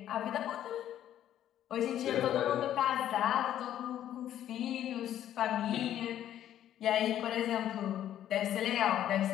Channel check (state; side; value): quieter; right; 11.4 dB